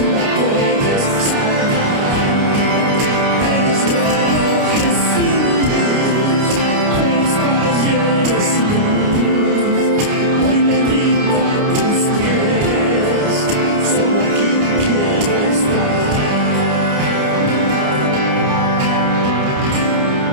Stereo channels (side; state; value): left; late; 29 ms